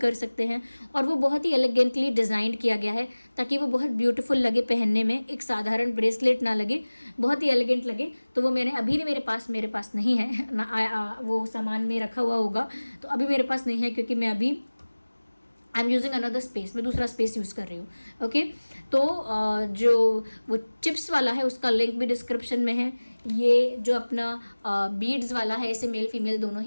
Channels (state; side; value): inverted; both; correlation -1.00